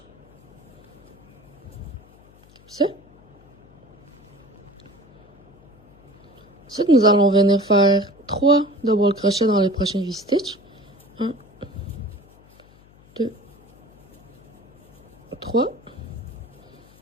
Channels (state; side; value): noise; left; hum, 27 dB below the sound